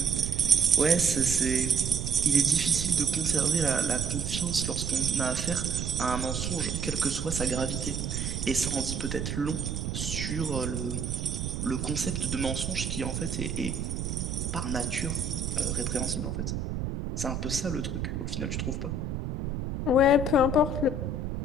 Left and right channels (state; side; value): noise; right; rumble, 3 dB below the sound